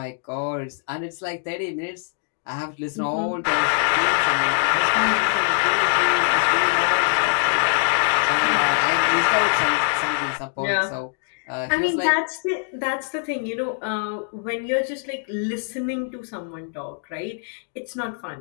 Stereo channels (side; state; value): right; silent; digital silence